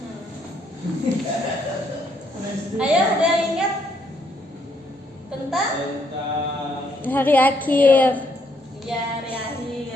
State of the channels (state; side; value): normal; both; correlation 0.72